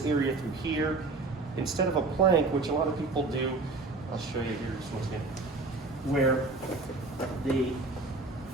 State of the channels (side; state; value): left; quieter; 3.5 dB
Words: area through here, instead of a plank, which a lot of people do, I'll show you here just once again, where